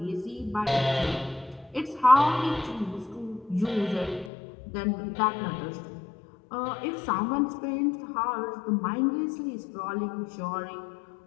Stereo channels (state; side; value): drops out; right; at 4.3 s